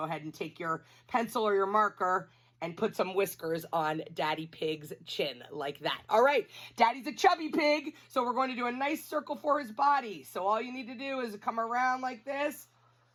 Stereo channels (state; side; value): identical; both; correlation 1.00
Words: ahead and take your pencil or your marker and put some whiskers on Daddy Pig's chin like that. All right, Daddy's a chubby pig, so we're going to do a nice circle for his body. So all you need to do is come around like this,